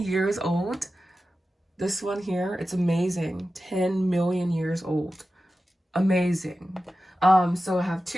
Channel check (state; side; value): normal; both; correlation 0.93